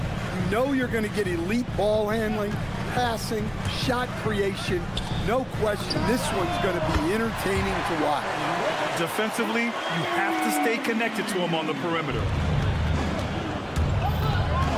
You know you're going to get elite ball handling, passing, shot creation. No question, this one's going to be entertaining to watch. Defensively, you have to stay connected to him on the perimeter.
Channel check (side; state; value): both; identical; correlation 1.00